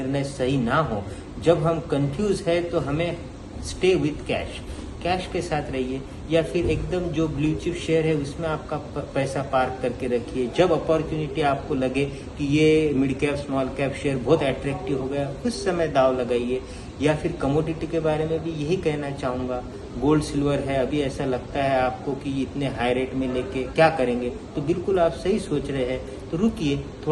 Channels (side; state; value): both; identical; correlation 1.00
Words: सही ना हो। जब हम कंफ्यूज है तो हमें स्टे विथ कैश के साथ रहिए, या फिर एकदम जो ब्लू चिप शेयर है उसमें आपका पैसा पार्क करके रखिए। जब अपॉर्चुनिटी आपको लगे कि ये mid cap small cap share बहुत अट्रैक्टिव हो गया, उस समय दाव लगाइए। या फिर कमोडिटी के बारे में भी यही कहना चाहूँगा। गोल्ड सिल्वर है, अभी ऐसा लगता है आपको कि इतने हाई रेट में लेके क्या करेंगे, तो बिल्कुल आप सही सोच रहे हैं, तो रुकिए,